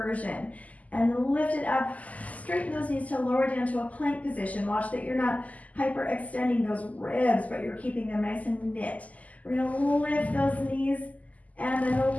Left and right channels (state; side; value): late; right; 0.075 ms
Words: And lift it up, straighten those knees to lower down to a plank position. Watch that you're not hyperextending those ribs, but you're keeping them nice and knit. We're going to lift those knees and